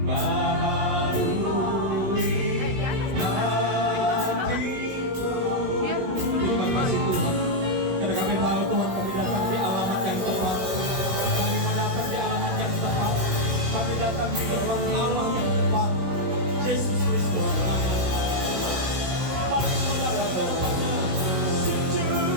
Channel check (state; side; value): late; left; 16 ms